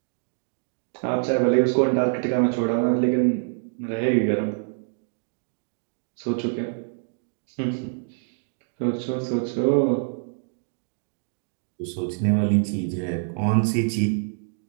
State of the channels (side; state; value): left; silent; digital silence